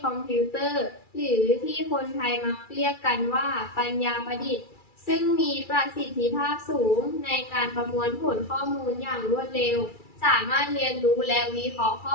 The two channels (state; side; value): late; right; 2.3 ms